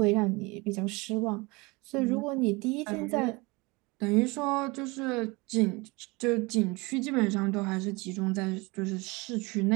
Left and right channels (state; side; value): quieter; left; 25.3 dB